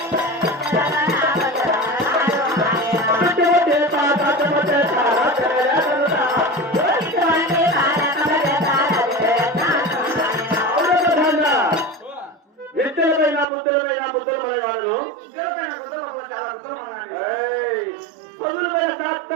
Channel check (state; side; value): drops out; left; at 13.5 s